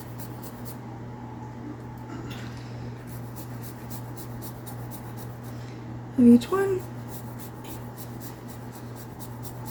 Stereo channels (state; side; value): identical; both; correlation 1.00